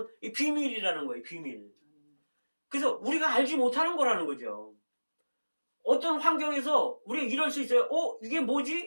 이 비밀이라는 거예요, 비밀. 그래서 우리가 알지 못하는 거라는 거죠. 어떤 환경에서 우리가 이럴 수 있어요. 이게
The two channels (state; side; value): inverted; both; correlation -1.00